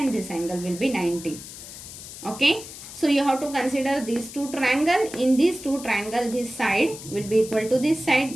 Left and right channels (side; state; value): left; noise; hiss, 13 dB below the sound